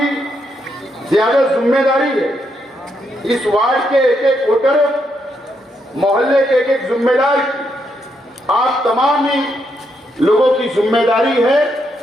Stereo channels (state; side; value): normal; both; correlation 0.79